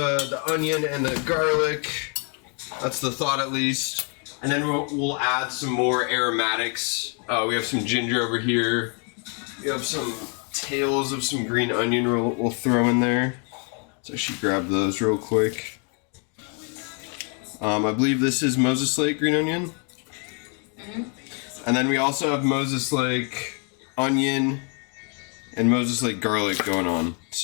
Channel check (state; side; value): quieter; right; 37.9 dB